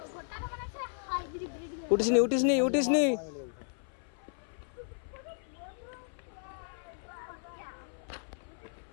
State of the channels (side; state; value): right; silent; 55 dB below the other